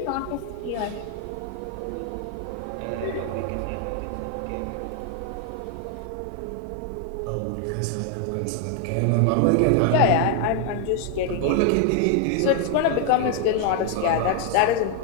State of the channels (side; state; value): both; different; correlation 0.00